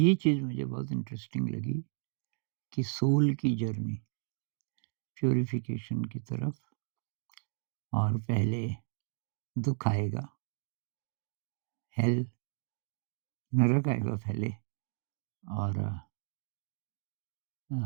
चीज़ मुझे बहुत इंटरेस्टिंग लगी कि सोल की जर्नी प्यूरिफिकेशन की तरफ, और पहले दुःख आएगा, हेल नरक आएगा पहले, और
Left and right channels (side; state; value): left; silent; digital silence